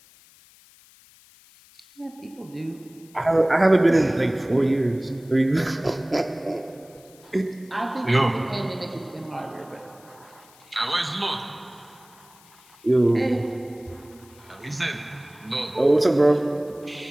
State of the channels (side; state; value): left; noise; hiss, 27 dB below the sound